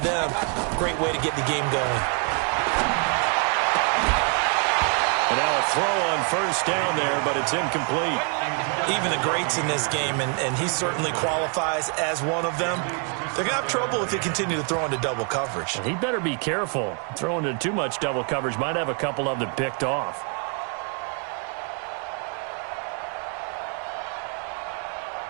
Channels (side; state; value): left; quieter; 39.1 dB